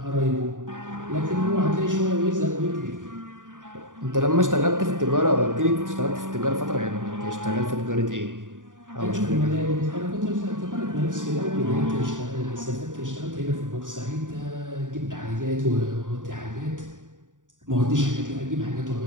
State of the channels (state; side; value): late; left; 0.88 ms